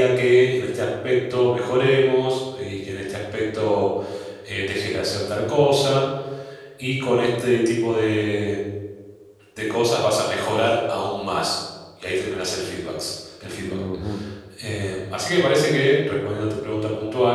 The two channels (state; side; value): identical; both; correlation 1.00